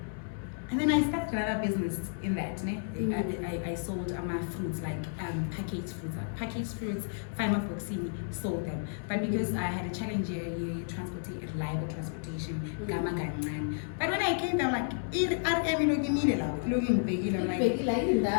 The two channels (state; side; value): silent; right; 57 dB below the other